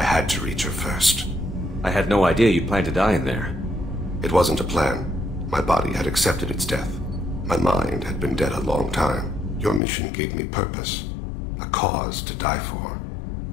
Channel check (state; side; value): drops out; right; at 9.8 s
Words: had to reach her first. I had no idea you'd plan to die in there. It wasn't a plan. My body had accepted its death. My mind had been dead a long time. Your mission gave me purpose, a cause to die for,